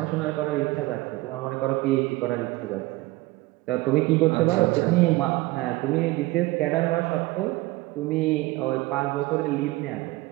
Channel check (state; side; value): quieter; left; 20.0 dB